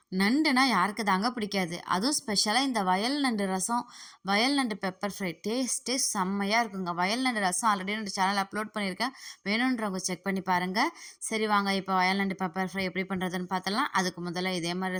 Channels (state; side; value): identical; both; correlation 1.00